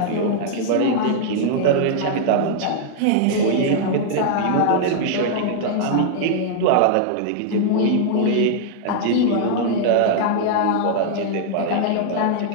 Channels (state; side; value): different; both; correlation -0.01